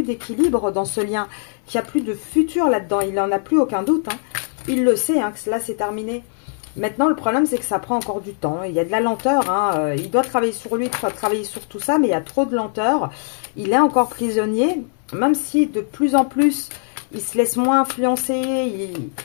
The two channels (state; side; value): silent; right; 61 dB below the other